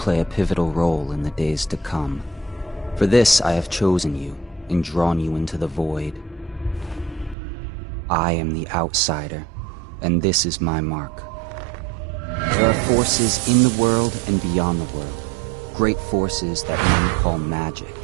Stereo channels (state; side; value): drops out; left; at 7.4 s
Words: a pivotal role in the days to come. For this, I have chosen you and drawn you into the void. I am the outsider, and this is my mark. There are forces in the world and beyond the world, great forces that men call magic.